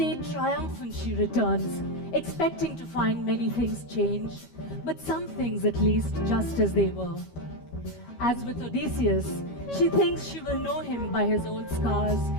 triumphant, she returns, expecting to find many things changed, but some things at least just as they were. As with Odysseus, she thinks she will know him by his old scars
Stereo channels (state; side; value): late; right; 13 ms